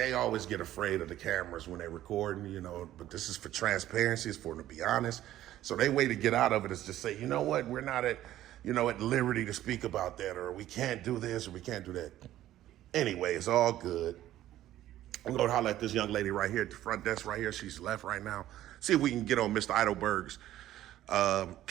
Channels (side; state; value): left; quieter; 13.5 dB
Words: always get afraid of the cameras when they're recording, but this is for transparency, it's for them to be honest. So their way to get out of it is to say, you know what, we're not at liberty to speak about that, or we can't do this, or we can't do that. Anyway, it's all good. I'm going to holler at this young lady right here at the front desk right here. She's left right now. See if we can get on Mr. Eidelberg's